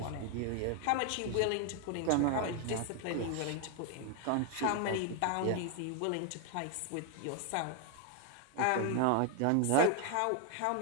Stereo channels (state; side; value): different; both; correlation 0.00